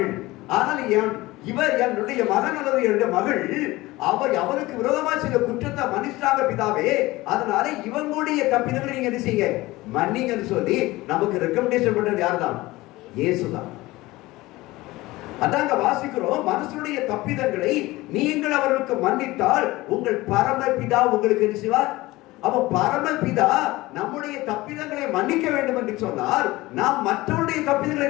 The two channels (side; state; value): right; quieter; 19.5 dB